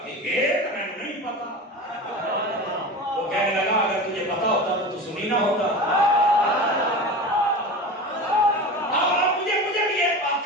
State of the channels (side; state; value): both; normal; correlation 0.30